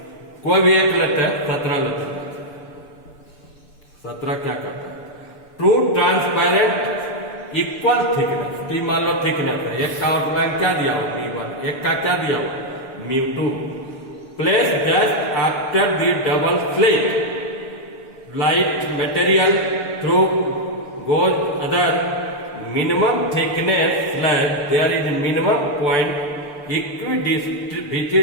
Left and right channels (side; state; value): right; late; 6.8 ms